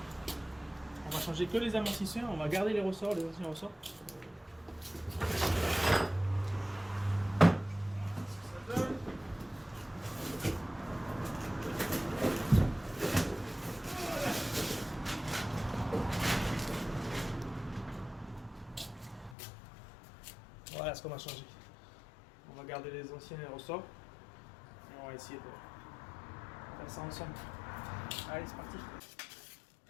que les amortisseurs. On va garder les ressorts, les anciens ressorts. Voilà ce qu'on va changer. On va garder les anciens ressorts et on va essayer de faire ça ensemble. Allez, c'est parti.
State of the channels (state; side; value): drops out; right; at 19.4 s